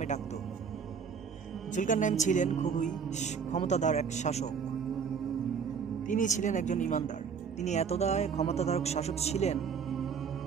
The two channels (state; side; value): quieter; left; 6.3 dB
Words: ডাকত। জুলকারনাইন ছিলেন খুবই ক্ষমতাধর এক শাসক। তিনি ছিলেন একজন ইমানদার। তিনি এতটাই ক্ষমতাধারক শাসক ছিলেন